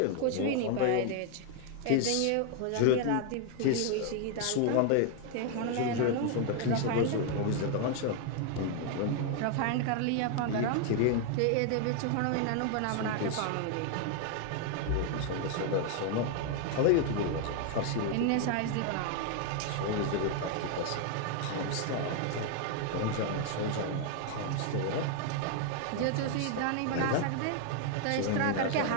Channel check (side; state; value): both; different; correlation 0.00